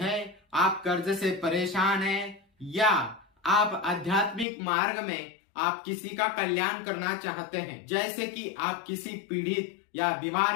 आप कर्ज से परेशान हैं या आप आध्यात्मिक मार्ग में आप किसी का कल्याण करना चाहते हैं, जैसे कि आप किसी पीड़ित या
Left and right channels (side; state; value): right; drops out; at 4.5 s